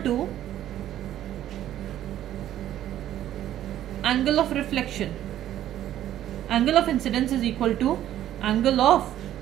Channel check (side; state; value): left; quieter; 12.1 dB